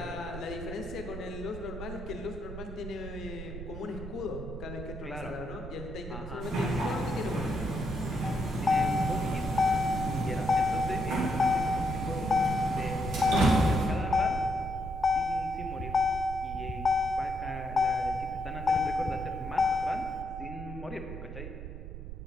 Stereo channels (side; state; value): right; noise; rumble, 10 dB below the sound